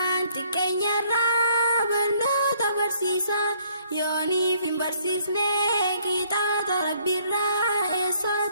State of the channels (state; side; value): inverted; both; correlation -0.65